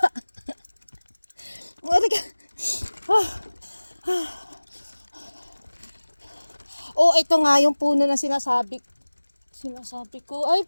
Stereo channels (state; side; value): inverted; both; correlation -1.00